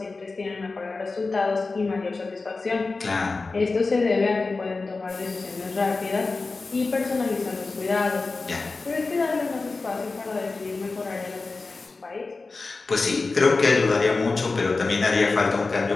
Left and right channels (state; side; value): quieter; right; 3.8 dB